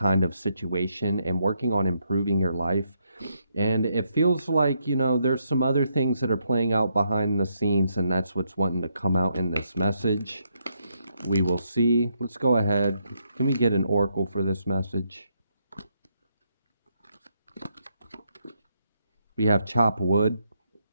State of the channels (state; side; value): inverted; both; correlation -0.77